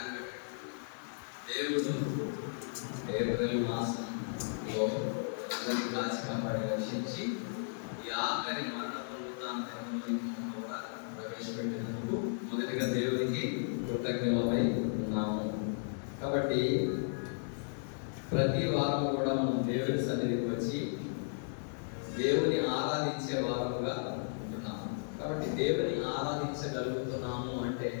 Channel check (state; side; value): silent; right; digital silence